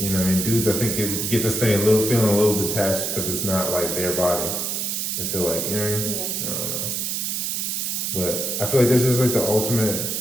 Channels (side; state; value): right; noise; hiss, 1 dB below the sound